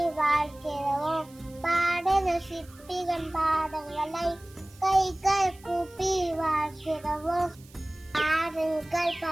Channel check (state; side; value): noise; right; hiss, 25 dB below the sound